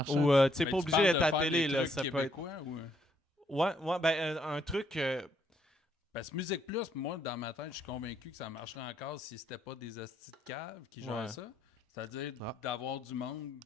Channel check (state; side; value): normal; both; correlation 0.71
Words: Ou, tu sais, Ben, pas tu obligé parles d'être de à la faire télé, des là. trucs Ça peut être. québécois ou... Ouais, ben, un truc. Parce que Musique Plus, moi, dans ma tête, je suis convaincu que ça marcherait encore si c'était pas des hosties de cave qui gèrent Ouais. ça. C'est-à-dire d'avoir du monde